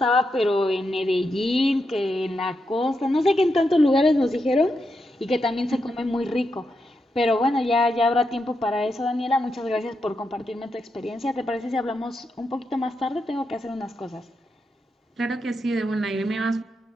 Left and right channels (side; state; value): both; normal; correlation 0.85